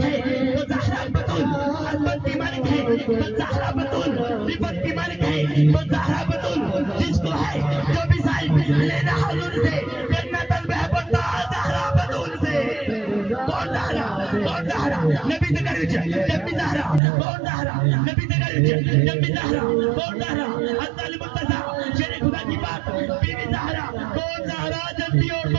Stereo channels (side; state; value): left; drops out; at 17.0 s